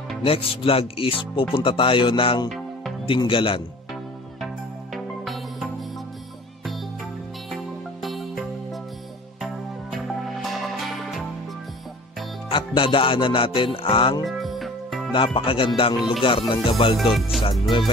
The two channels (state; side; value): normal; both; correlation 0.45